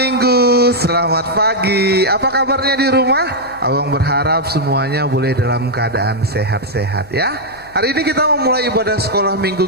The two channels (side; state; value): left; noise; hum, 25 dB below the sound